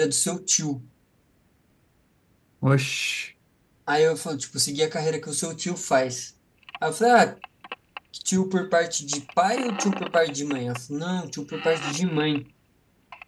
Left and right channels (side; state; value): both; identical; correlation 1.00